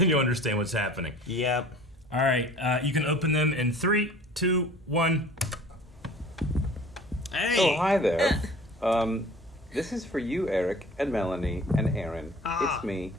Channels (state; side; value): normal; both; correlation 0.46